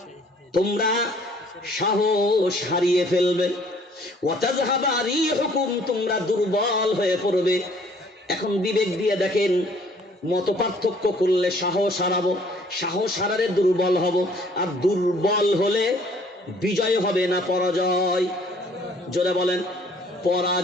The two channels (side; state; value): both; normal; correlation 0.58